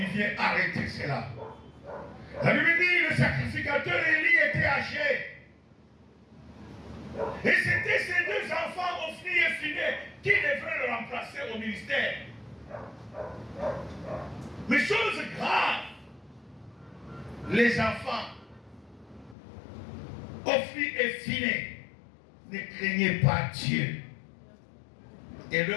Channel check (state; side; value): drops out; right; at 19.4 s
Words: vient arrêter cela. La Bible dit, le sacrificateur Élie était âgé. Et c'était ces deux enfants, Ophni et Phiné, qui devraient le remplacer au ministère. Mais chose grave, les enfants, Ophni et Phiné, ne craignaient pas Dieu. Et